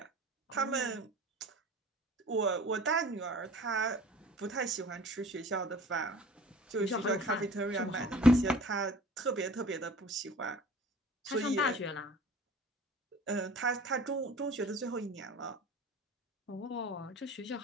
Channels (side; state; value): both; normal; correlation 0.45